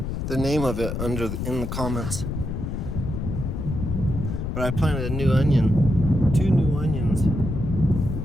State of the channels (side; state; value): left; noise; rumble, 3 dB below the sound